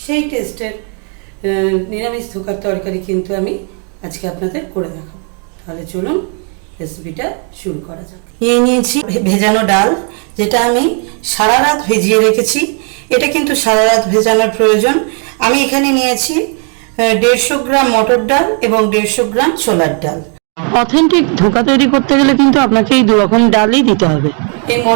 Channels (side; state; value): left; quieter; 39.7 dB